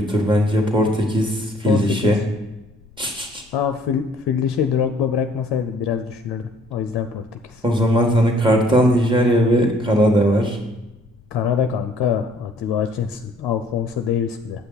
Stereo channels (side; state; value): left; noise; rumble, 28 dB below the sound